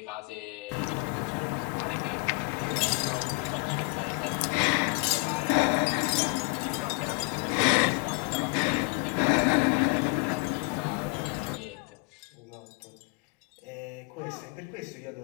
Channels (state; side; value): quieter; right; 32.5 dB